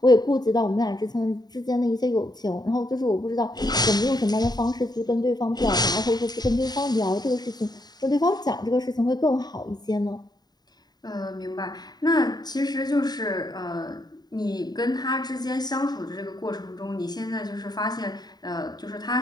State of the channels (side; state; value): right; late; 0.20 ms